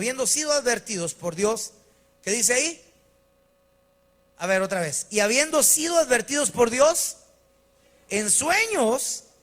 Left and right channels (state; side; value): identical; both; correlation 1.00